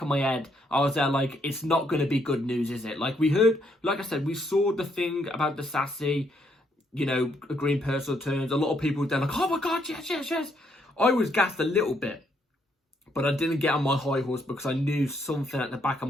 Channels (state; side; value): normal; both; correlation 0.73